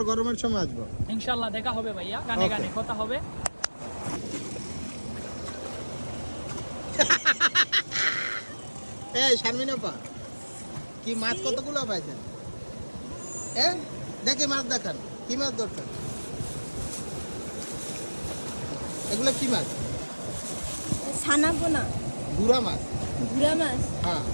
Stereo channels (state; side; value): inverted; both; correlation -1.00